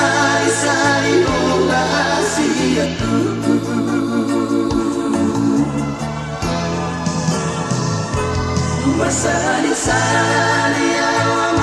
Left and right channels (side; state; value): both; identical; correlation 1.00